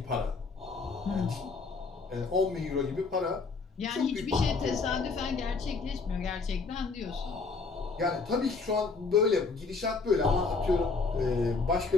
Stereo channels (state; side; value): quieter; right; 4.3 dB